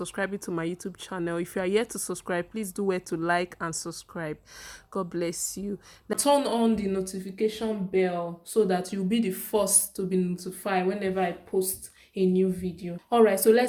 to my YouTube channel. If you are yet to subscribe, please do well to like and subscribe. God bless you. Now, turn on the notification bell so that you'll be the first to be notified whenever I post a new video. Alright, so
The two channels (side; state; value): both; identical; correlation 1.00